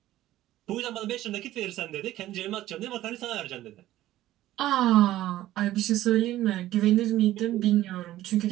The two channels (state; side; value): quieter; left; 14.5 dB